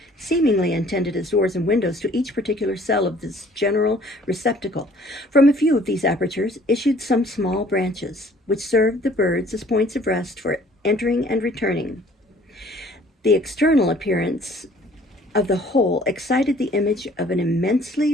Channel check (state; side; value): normal; both; correlation 0.55